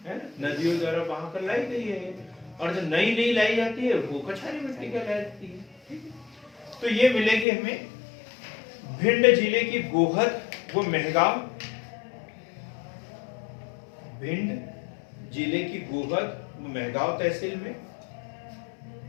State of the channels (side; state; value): right; drops out; at 7.5 s